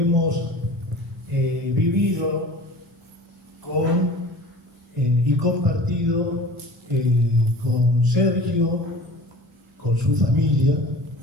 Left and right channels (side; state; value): both; normal; correlation 0.41